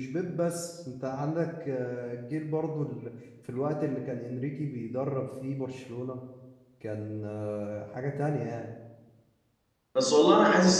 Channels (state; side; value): identical; both; correlation 1.00